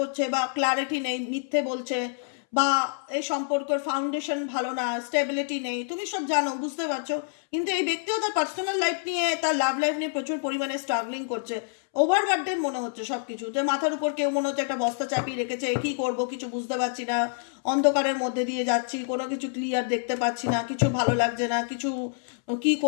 বা ক্ল্যারিটি নেই, মিথ্যে বলছে, বা এই সম্পর্কের ফাউন্ডেশন ভালো না, স্টেবিলিটি নেই, তুমি সব জানো, বুঝতে পারছো। কিন্তু এই ব্যক্তিও তার পার্সোনাল লাইফ নিয়ে, তার লাভ লাইফ নিয়ে প্রচুর পরিমাণে স্ট্রাগলিং করছে। ওভারবার্ডেন মনে হচ্ছে সব কিছু, যে মাথার উপর কেউ মনে হচ্ছে একটা বস্তা চাপিয়ে রেখেছে, কি করব কিছু বুঝতে পারছি না, অন্ধকারের মধ্যে দিয়ে যাচ্ছি, কোনো কিছু ক্লিয়ার দেখতে পাচ্ছি না, কিছু ভালো লাগছে না, কিছু কি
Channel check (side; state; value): right; silent; 60 dB below the other